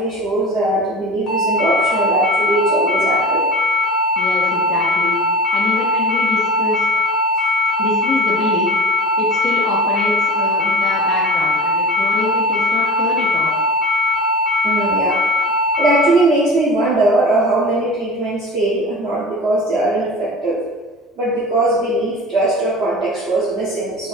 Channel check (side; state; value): both; normal; correlation 0.33